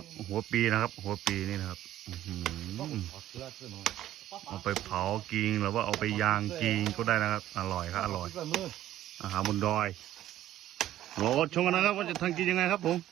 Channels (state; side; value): quieter; left; 13.1 dB